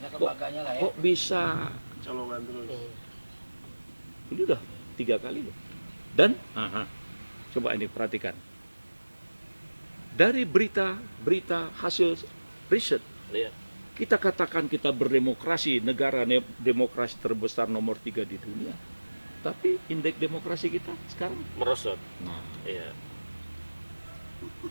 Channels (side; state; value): both; inverted; correlation -1.00